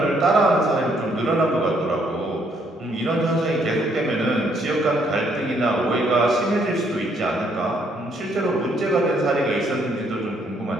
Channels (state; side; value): normal; both; correlation 0.69